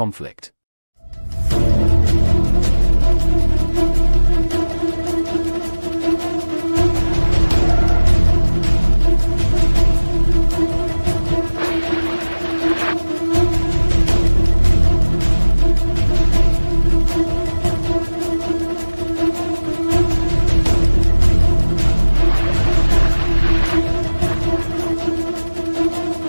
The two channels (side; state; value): both; inverted; correlation -1.00